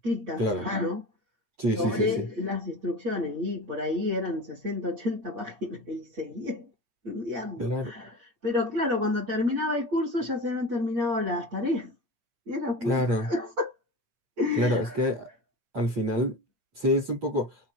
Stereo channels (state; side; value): late; left; 8.6 ms